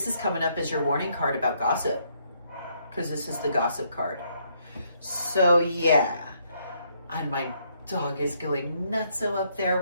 is coming up as your warning card about gossip, because this is the gossip card. So yeah, and my dog is going nutso up there.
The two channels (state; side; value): inverted; both; correlation -0.72